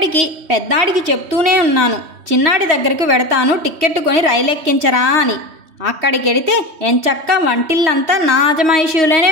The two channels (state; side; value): late; left; 3.1 ms